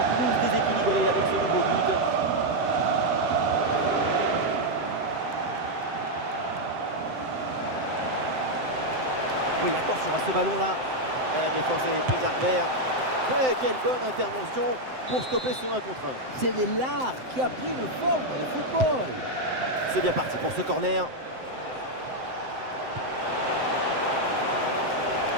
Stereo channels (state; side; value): late; left; 7.8 ms